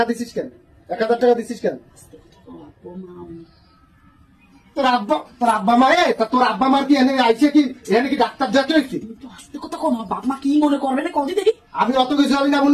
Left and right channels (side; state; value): both; identical; correlation 1.00